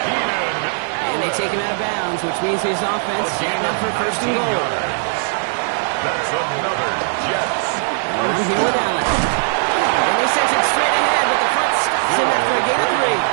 Keenan. And they take him out of bounds, which means his offense setting up for first and goal. That's another Jets. I'm here with Allen. And they send it straight ahead, but the front stops him after a gain of 3.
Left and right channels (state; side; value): silent; left; 67 dB below the other